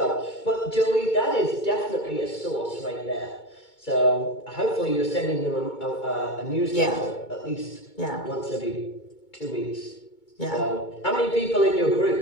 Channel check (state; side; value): late; right; 2.2 ms